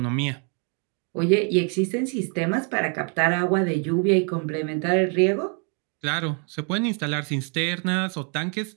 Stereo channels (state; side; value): quieter; left; 38.6 dB